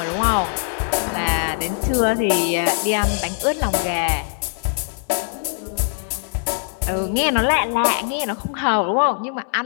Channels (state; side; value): silent; right; digital silence